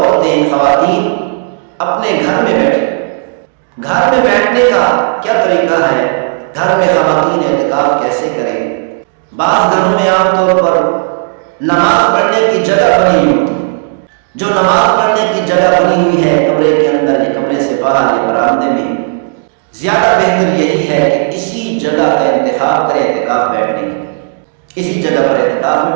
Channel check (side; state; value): left; silent; 67 dB below the other